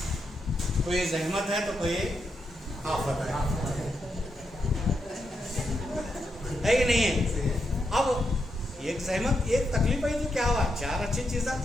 कोई जहमत है तो कोई आफत है कि नहीं है। अब एक जहमत एक तकलीफ आई तो क्या हुआ, 4 अच्छी चीज़ें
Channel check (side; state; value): both; normal; correlation 0.83